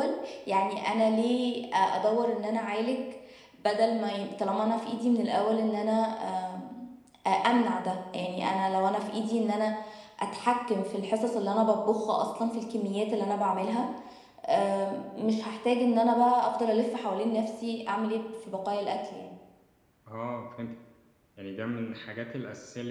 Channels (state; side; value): identical; both; correlation 1.00